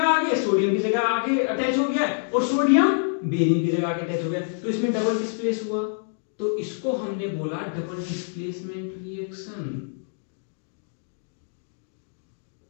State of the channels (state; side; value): silent; right; digital silence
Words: आ गया? सोडियम की जगह आके अटैच हो गया है, और सोडियम बेरियम की जगह आके अटैच हो गया, तो इसमें डबल डिस्प्लेस हुआ। तो इसको हमने बोला डबल डिस्प्लेसमेंट रिएक्शन,